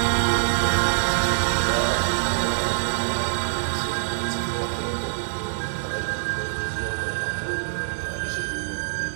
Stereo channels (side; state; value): left; silent; 58 dB below the other